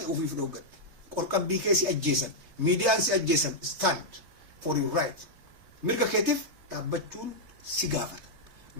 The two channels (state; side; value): late; left; 3.3 ms